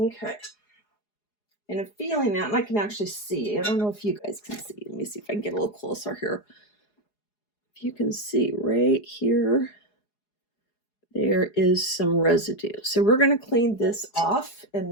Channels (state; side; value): late; right; 4.8 ms